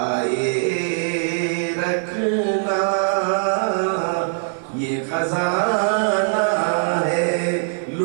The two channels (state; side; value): silent; left; 65 dB below the other